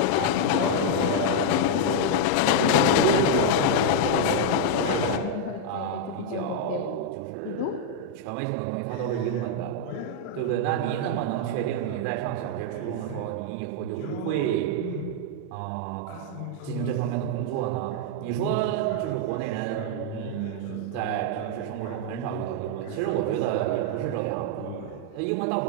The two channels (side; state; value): both; different; correlation -0.01